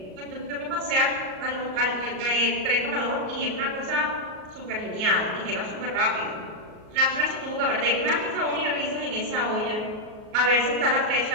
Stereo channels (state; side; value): late; left; 38 ms